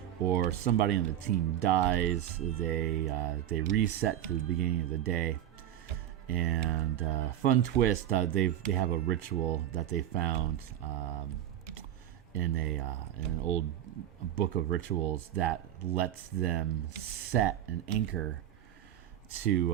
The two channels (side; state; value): left; quieter; 11.7 dB